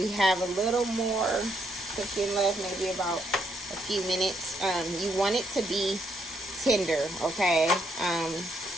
have a little more cooking left, maybe about a few minutes. You want it to be tender, okay?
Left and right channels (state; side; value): normal; both; correlation 0.74